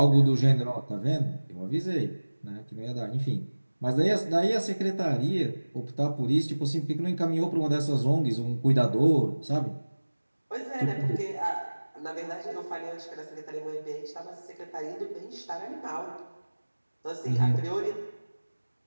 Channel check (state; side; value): inverted; both; correlation -1.00